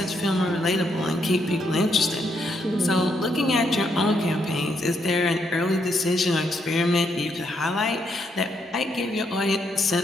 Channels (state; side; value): normal; both; correlation 0.76